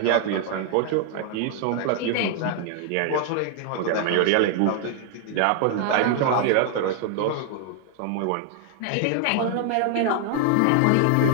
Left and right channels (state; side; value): different; both; correlation 0.00